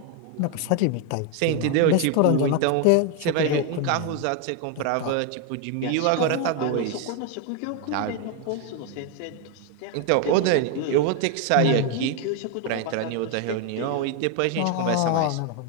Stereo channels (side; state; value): both; different; correlation 0.01